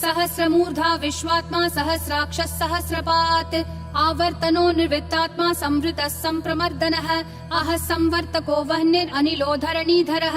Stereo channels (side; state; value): both; identical; correlation 1.00